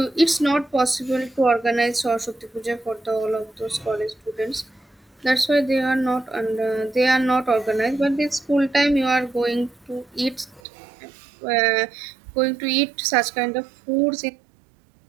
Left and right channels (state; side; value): drops out; left; at 10.6 s